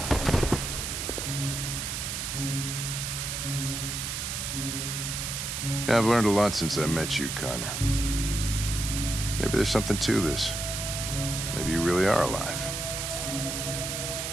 Yeah, I've learned a lot since I met you, Connor. Maybe there's something to this. Maybe you really are alive.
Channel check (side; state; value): right; noise; hiss, 3 dB below the sound